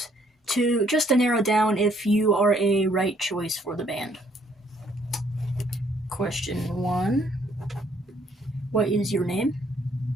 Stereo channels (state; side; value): normal; both; correlation 0.66